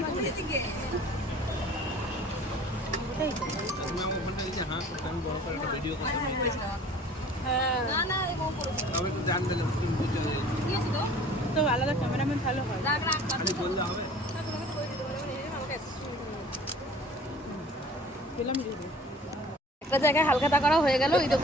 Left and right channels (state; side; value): normal; both; correlation 0.48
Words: তো আলাদা ক্যামেরাম্যান ভালো হয়। একটা জায়গায় হালখাতা করা হয়ে গেল ওই